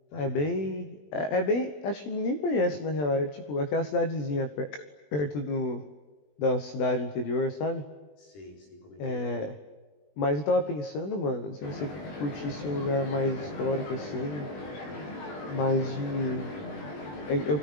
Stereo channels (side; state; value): right; late; 20 ms